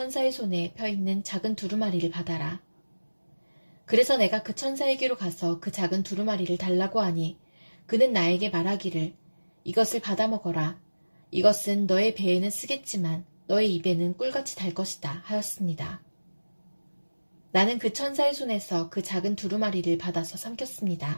손에 펴 있는 작은 두루마리를 받아라. 그래서 내가 그 천사에게로 가서 그 작은 두루마리를 달라고 하니 그는 나에게 말하기를 이것을 받아 먹어라. 이것은 너의 배에는 쓰겠지만 너의 입에는 꿀같이 달 것이다 하였습니다. 나는 그 천사의 손에서 그 작은 두루마리를 받아서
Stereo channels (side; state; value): both; inverted; correlation -1.00